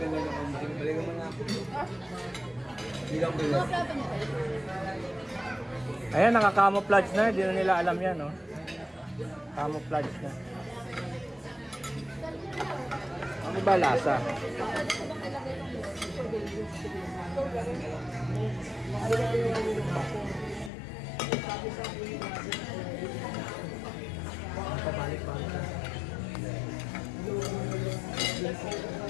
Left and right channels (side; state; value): right; drops out; at 20.7 s